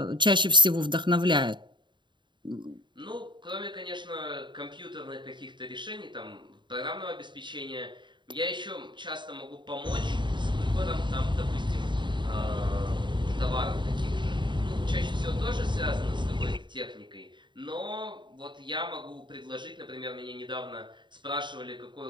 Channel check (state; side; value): late; left; 0.23 ms